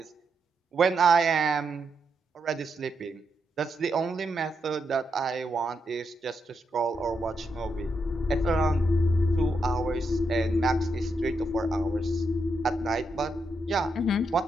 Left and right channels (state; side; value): normal; both; correlation 0.82